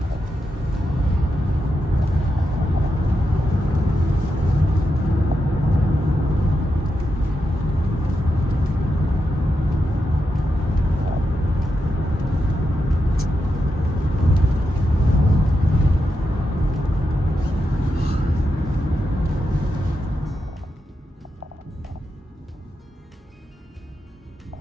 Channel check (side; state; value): both; normal; correlation 0.86